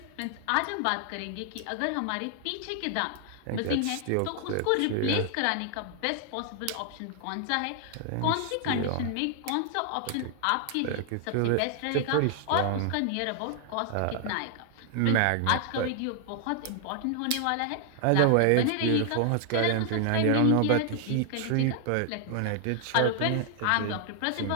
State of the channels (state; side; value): different; both; correlation 0.00